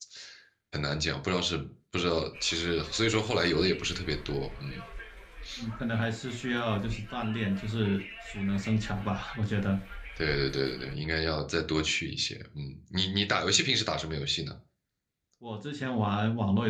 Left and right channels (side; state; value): both; identical; correlation 1.00